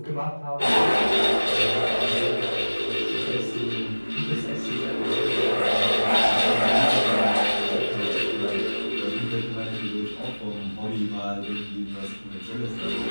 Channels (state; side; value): inverted; both; correlation -1.00